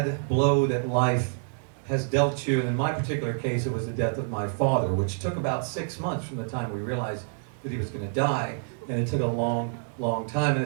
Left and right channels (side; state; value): left; silent; digital silence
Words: blow that life has dealt you, and in my particular case it was the death of my father, which took about 6 months from the time we realized that he was going to die, and it took a long time, and